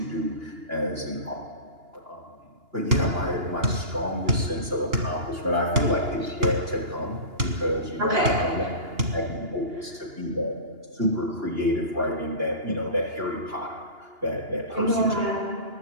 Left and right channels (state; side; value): late; left; 2.8 ms